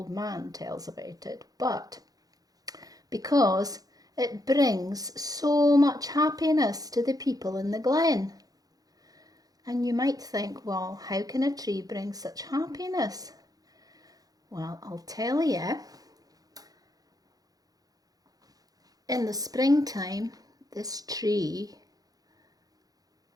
man tells about it, but because it brings so much happiness to the people in the glen. And you might think, well, how can a tree bring such happiness? Well, I'll tell you. In the springtime, this tree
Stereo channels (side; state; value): left; late; 0.18 ms